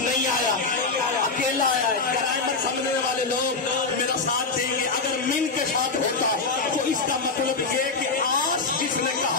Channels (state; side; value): quieter; right; 4.1 dB